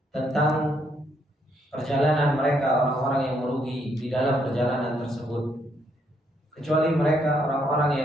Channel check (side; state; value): both; normal; correlation 0.73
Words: tentang perjalanan mereka orang-orang yang merugi di dalam perjalanan tersebut, kecuali mereka orang-orang